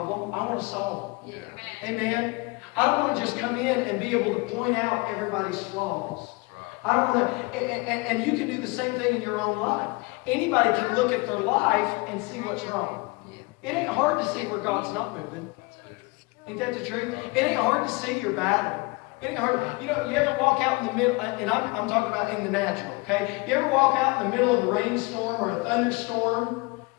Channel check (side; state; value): right; quieter; 26.0 dB